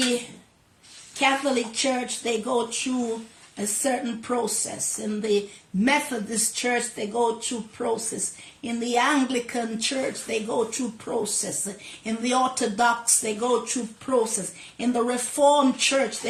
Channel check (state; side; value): identical; both; correlation 1.00